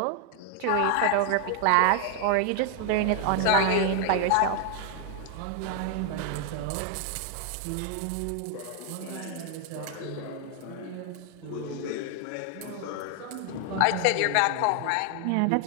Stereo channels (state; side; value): different; both; correlation 0.01